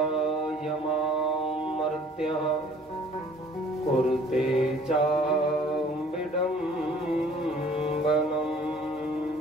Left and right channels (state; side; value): normal; both; correlation 0.54